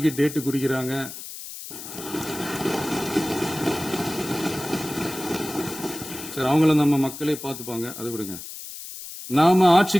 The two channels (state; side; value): noise; left; hiss, 11 dB below the sound